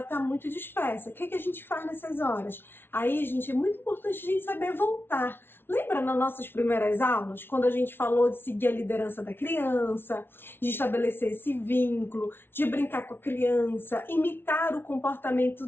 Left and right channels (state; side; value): late; right; 0.11 ms